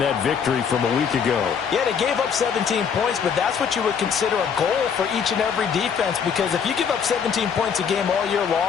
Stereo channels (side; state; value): right; quieter; 6.9 dB